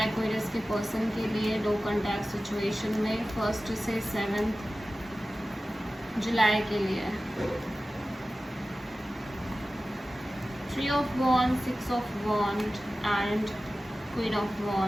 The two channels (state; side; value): normal; both; correlation 0.95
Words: एक्वेरियस के पर्सन के लिए नो कॉन्टैक्ट सिचुएशन में 1 से 7 जुलाई के लिए। 3 of wand, 6 of wand and queen of